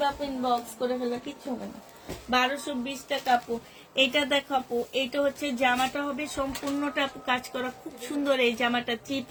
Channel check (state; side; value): identical; both; correlation 1.00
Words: প্রিন্ট বক্স করে ফেলবা, কিচ্ছু হবে না। 1220 টাকা আপু। এটা দেখো আপু, এটা হচ্ছে জামাটা হবে সম্পূর্ণটা আপু কাজ করা, খুব সুন্দর এই জামাটা। 3